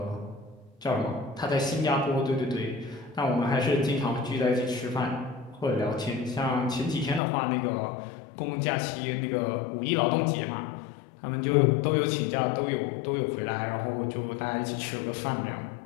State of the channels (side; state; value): right; drops out; at 7.2 s